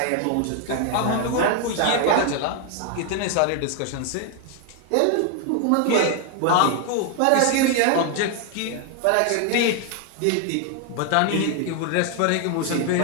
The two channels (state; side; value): different; both; correlation 0.01